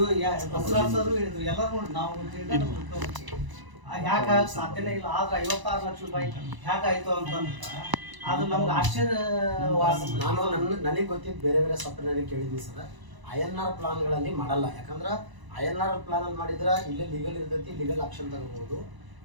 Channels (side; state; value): left; late; 1.0 ms